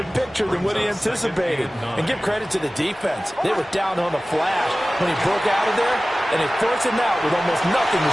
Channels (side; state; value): both; normal; correlation 0.97